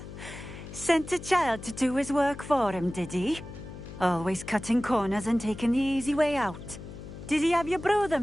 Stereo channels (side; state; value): left; noise; hum, 13 dB below the sound